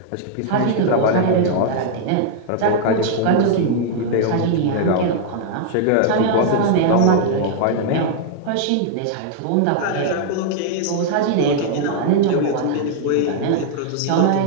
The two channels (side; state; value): both; different; correlation -0.01